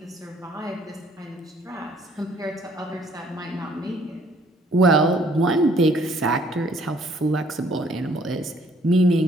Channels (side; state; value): both; normal; correlation 0.61